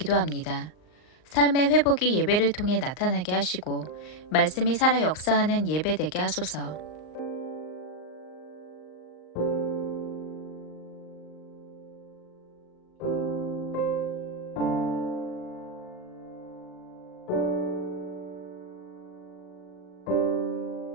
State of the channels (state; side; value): late; right; 39 ms